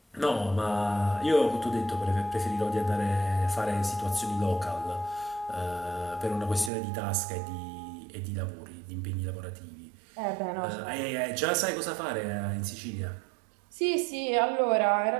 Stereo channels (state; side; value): drops out; left; at 6.7 s